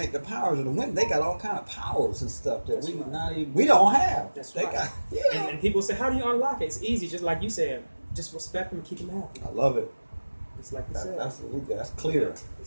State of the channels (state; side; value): inverted; both; correlation -1.00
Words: the powers of the women. They got all kind of powers and stuff that we don't have. That's they right. got, and people say, how do you unlock it? It's easy, just like you said. Just respect them and keep them happy. I love it. It's like you said. That's clear.